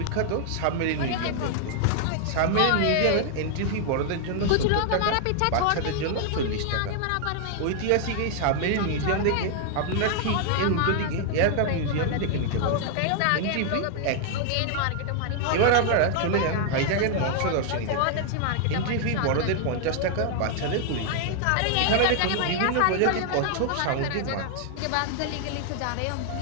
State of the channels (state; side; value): different; both; correlation 0.00